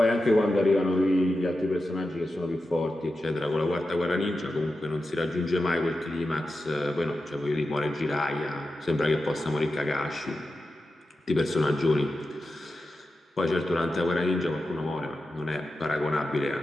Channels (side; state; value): both; normal; correlation 0.91